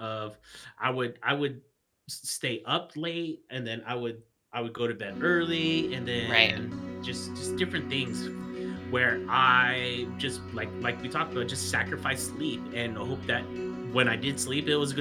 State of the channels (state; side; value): identical; both; correlation 1.00